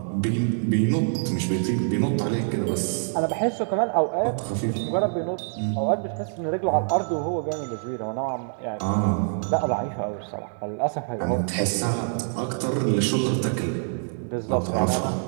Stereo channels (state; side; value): silent; left; digital silence